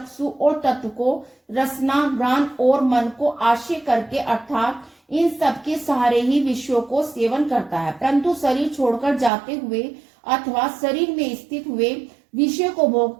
और तत्व को रसना, घ्राण और मन को आश्रय करके अर्थात इन सब के सहारे ही विषयों को सेवन करता है। परंतु शरीर छोड़कर जाते हुए अथवा शरीर में स्थित हुए विषय को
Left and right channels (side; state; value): left; drops out; at 9.3 s